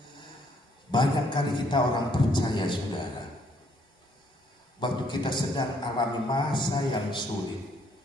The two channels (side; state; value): both; normal; correlation 0.68